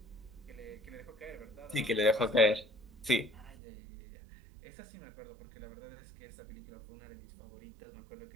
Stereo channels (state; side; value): drops out; left; at 3.6 s